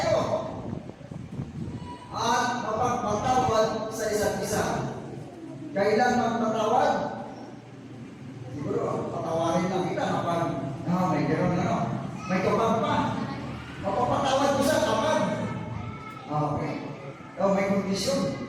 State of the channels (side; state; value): both; identical; correlation 1.00